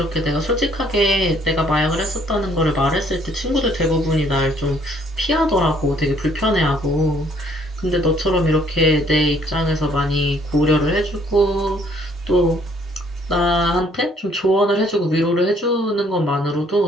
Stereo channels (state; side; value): normal; both; correlation 0.63